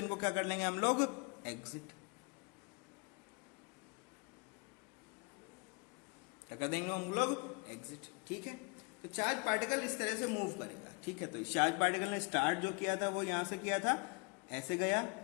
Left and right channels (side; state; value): right; quieter; 31.6 dB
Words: क्या कर लेंगे हम लोग, एग्जिट, क्या कर देंगे हम लोग, एग्जिट, ठीक है। तो चार्ज पार्टिकल इस तरह से मूव करेगा, ठीक है। तो चार्ज पार्टिकल ने स्टार्ट जो किया था वो यहां से किया था, ऐसे गया,